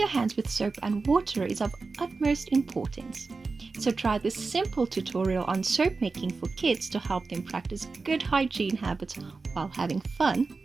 hands with soap and water is of utmost importance. So try this simple tutorial on soap making for kids to help them practice good hygiene habits while having fun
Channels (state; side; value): quieter; left; 4.1 dB